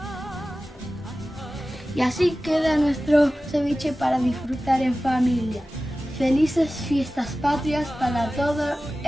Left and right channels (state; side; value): normal; both; correlation 0.96